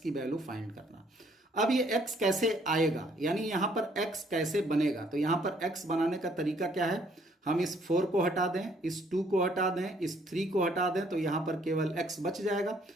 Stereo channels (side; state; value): both; normal; correlation 0.64